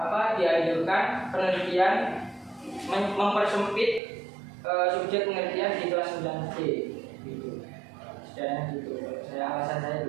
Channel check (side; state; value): left; drops out; at 4.0 s